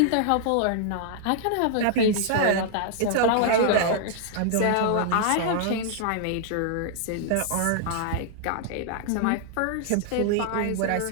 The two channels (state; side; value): different; both; correlation -0.01